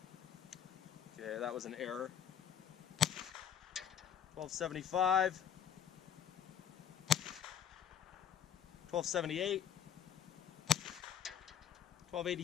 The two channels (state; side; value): quieter; right; 8.9 dB